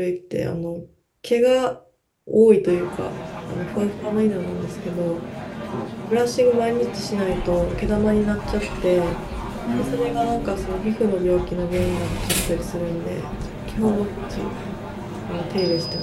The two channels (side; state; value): both; identical; correlation 1.00